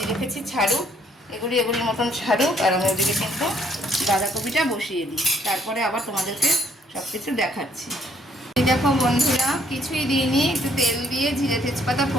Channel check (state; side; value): normal; both; correlation 0.66